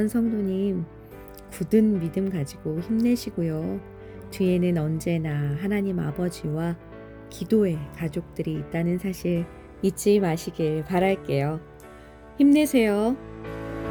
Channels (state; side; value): identical; both; correlation 1.00